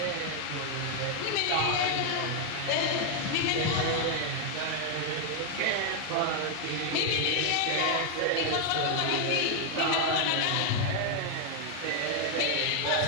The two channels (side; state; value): both; different; correlation 0.00